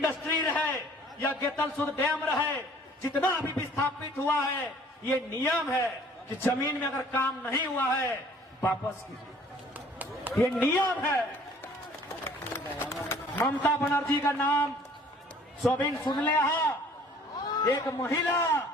रहे या गेतलसूद डैम रहे, जितना भी विस्थापित हुआ है, ये नियम है कि जमीन में अगर काम नहीं हुआ है वापस कीजिए, ये नियम है। ममता बनर्जी का नाम सोबिन सुन ले, एक महिला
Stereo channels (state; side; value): normal; both; correlation 0.54